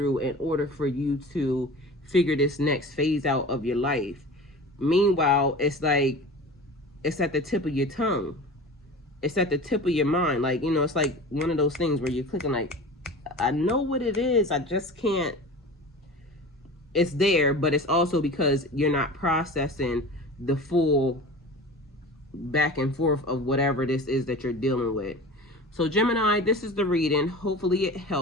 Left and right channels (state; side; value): normal; both; correlation 0.36